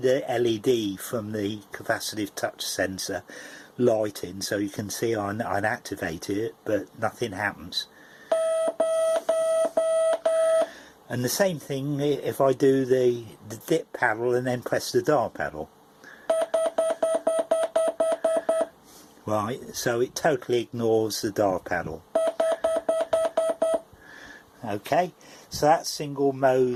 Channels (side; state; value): both; identical; correlation 1.00